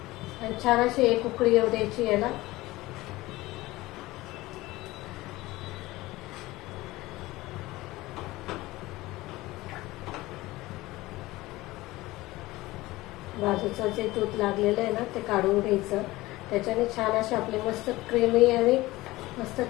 छान अशी एक उकळी येऊ द्यायची याला। बाजूचं जे दूध लागलेलं आहे ना ते काढून घ्यायचं, त्याच्याने छान अशी आपली मस्त क्रीमी आणि मस्त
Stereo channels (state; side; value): quieter; right; 19.0 dB